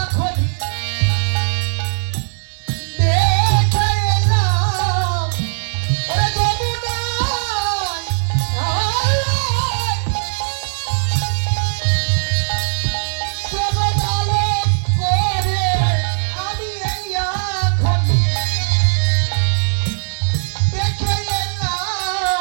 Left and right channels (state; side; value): silent; left; digital silence